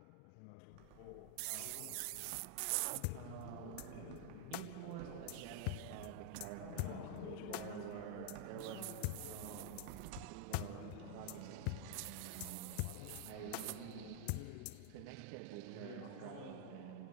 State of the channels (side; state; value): both; different; correlation 0.00